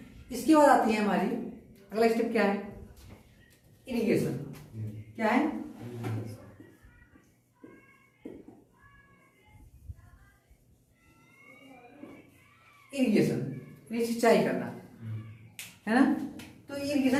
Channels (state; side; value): identical; both; correlation 1.00